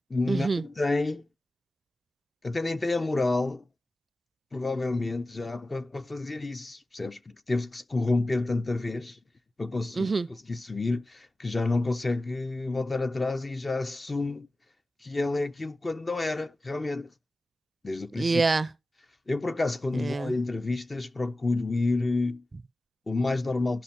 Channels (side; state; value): both; normal; correlation 0.95